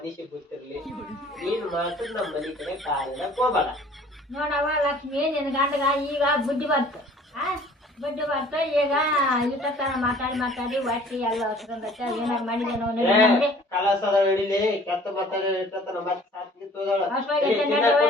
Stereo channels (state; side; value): normal; both; correlation 0.52